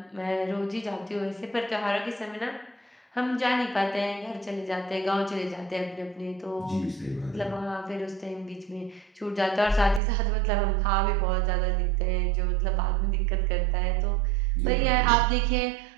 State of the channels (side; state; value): left; drops out; at 10.0 s